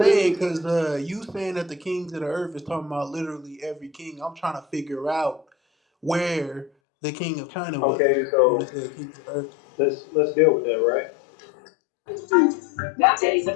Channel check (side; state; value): right; drops out; at 6.7 s